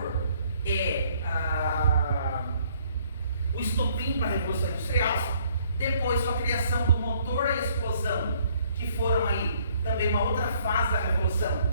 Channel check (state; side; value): inverted; both; correlation -0.63